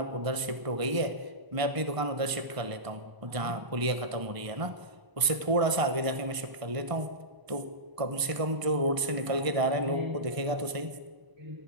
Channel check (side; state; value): left; late; 1.0 ms